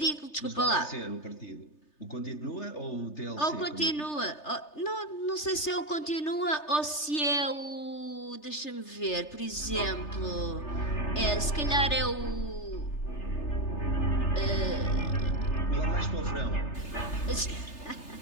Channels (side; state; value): right; late; 3.3 ms